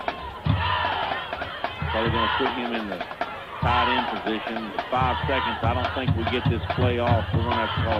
Probably going to put him in the tight end position. 5 seconds. I don't think we get this play off. We're going to have to call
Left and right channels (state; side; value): identical; both; correlation 1.00